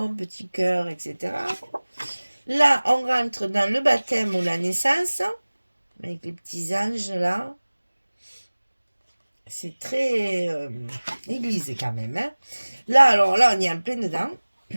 petits cœurs, etc. Là, on rentre dans le baptême ou la naissance, avec les petits anges là. C'est très église quand même. Hein. Là, alors là, on est en plein dedans.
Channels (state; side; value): inverted; both; correlation -1.00